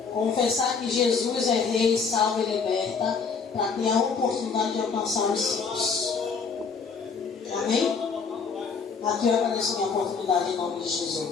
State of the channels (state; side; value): quieter; right; 5.4 dB